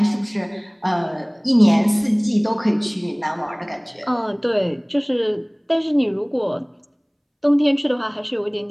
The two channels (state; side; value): identical; both; correlation 1.00